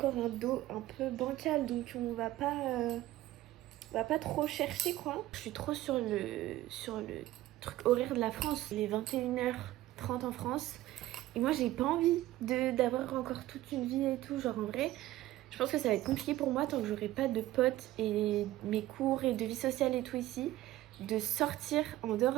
un dos un peu bancal. Donc on va pas trop chercher quoi. Je suis trop sur le truc horaire de la France. Il est 21h30 en France. Et moi j'ai pas envie d'avoir encore toute une vie et tout. Genre en vrai, je pense que ça va être compliqué pour moi tant que j'aurai pas de potes et mes cours et de vie sociale et tout ici, de sortir en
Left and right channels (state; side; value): quieter; left; 15.6 dB